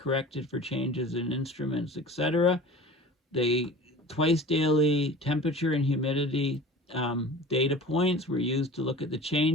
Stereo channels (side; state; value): both; normal; correlation 0.39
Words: for changes in instruments, etc. They twice daily temperature and humidity data points were used to look at the